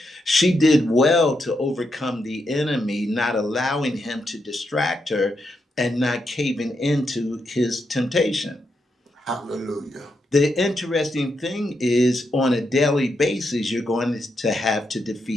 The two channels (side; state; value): both; normal; correlation 0.83